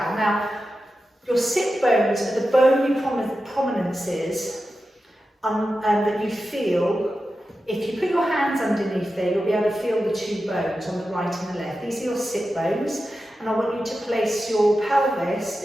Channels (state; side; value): normal; both; correlation 0.91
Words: Now, your sit bones are the bony prominences that you feel. If you put your hands underneath there, you'll be able to feel the two bones on the right and the left. These are your sit bones, and I want you to place your pelvis,